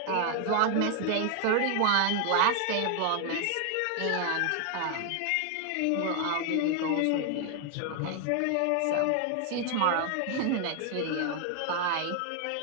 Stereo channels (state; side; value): different; both; correlation 0.00